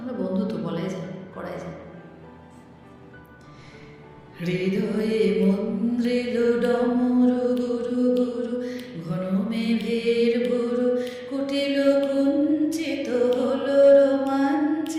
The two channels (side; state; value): both; identical; correlation 1.00